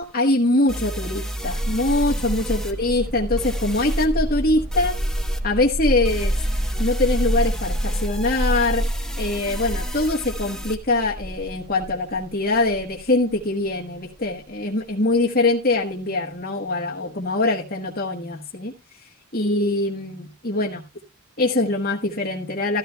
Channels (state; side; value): normal; both; correlation 0.29